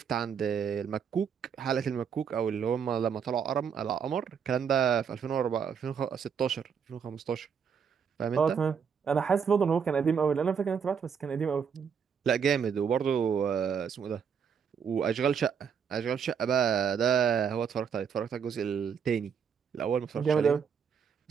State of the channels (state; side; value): quieter; left; 7.0 dB